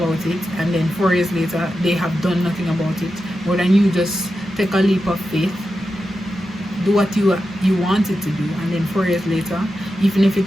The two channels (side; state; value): both; normal; correlation 0.90